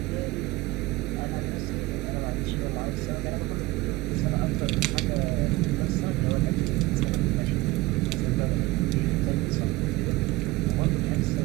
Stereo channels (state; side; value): quieter; left; 19.9 dB